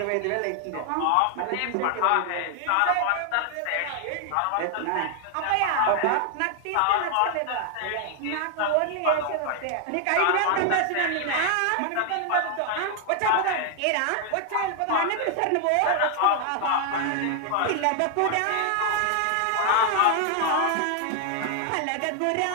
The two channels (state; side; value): different; both; correlation 0.00